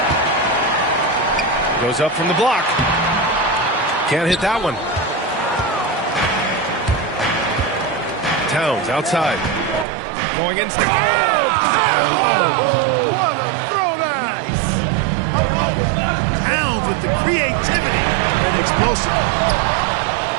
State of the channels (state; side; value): drops out; left; at 9.9 s